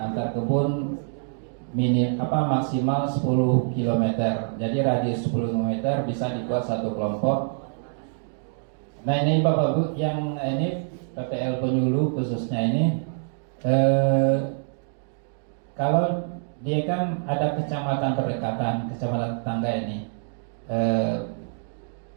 kebun maksimal 10 km. Jadi radius 10 km bisa dibuat satu kelompok. Nah ini Bapak Ibu yang ini PPL Penyuluh khususnya ini kalau dia kan ada kecamatan berdekatan, kecamatan tetangga ini.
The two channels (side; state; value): left; silent; digital silence